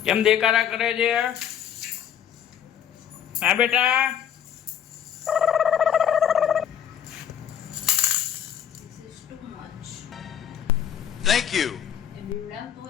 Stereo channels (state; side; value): quieter; right; 9.2 dB